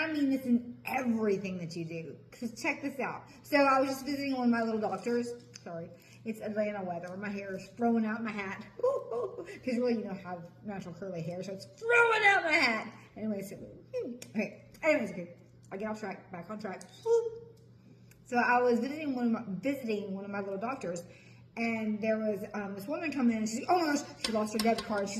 mean this in everything that you do. Because check this out. So I was just visiting one of my little doctors. Sorry. It's Atlanta weather. My hair is throwing out my hat. Because really, you know, I have natural curly hair. So it's throwing out my hat. Anyways, okay. Anyways, okay. I get off track. Back on track. So I was visiting one of my little doctors. And there was this woman come in and she's like, oh my gosh, she lost her debit card.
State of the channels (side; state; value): both; identical; correlation 1.00